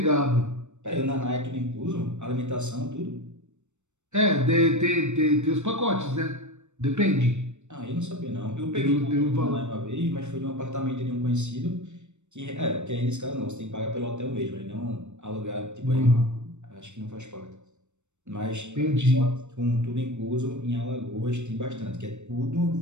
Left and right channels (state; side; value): late; left; 0.83 ms